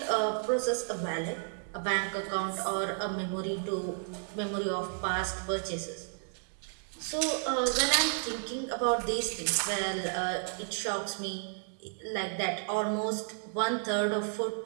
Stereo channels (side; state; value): left; silent; 56 dB below the other